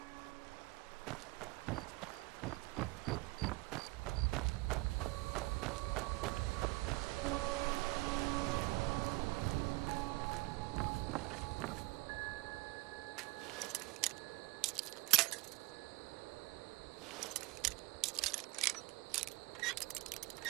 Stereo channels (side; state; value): left; quieter; 22.9 dB